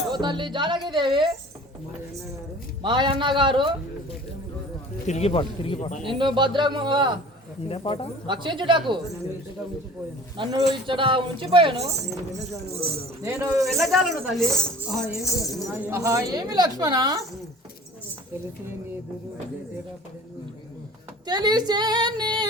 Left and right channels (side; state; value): both; normal; correlation 0.44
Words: ఓ తల్లి జానకి దేవి మా అన్న గారు నిన్ను భద్రంగా రక్షించుటకు నన్ను ఇచ్చట ఉంచిపోయాను. నేను వెళ్ళజాలను తల్లి. ఆహా, ఏమి లక్ష్మణ? తెలిసే నీ